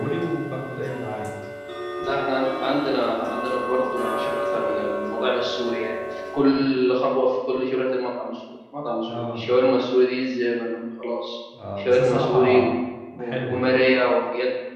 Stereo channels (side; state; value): both; identical; correlation 1.00